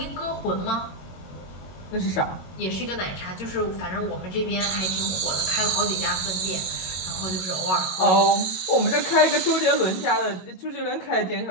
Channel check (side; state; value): right; late; 22 ms